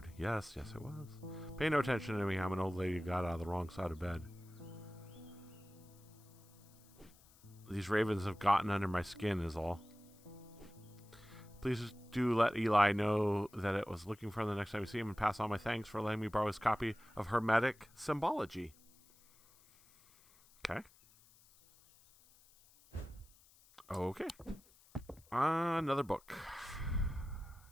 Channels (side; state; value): left; noise; hiss, 27 dB below the sound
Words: Yes, yes, it was. Pay no attention to me. I'm an old lady who got out of the wrong side of bed. These ravens have gotten under my skin is all. Please do let Eli know that it was looking for him the next time we see him, and pass on my thanks for letting me borrow his copy of Hermetic Symbology. Okay. Okay. Another book.